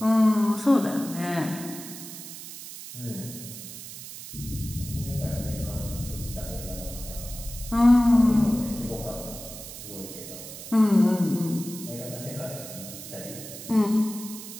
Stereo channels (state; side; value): noise; right; hiss, 12 dB below the sound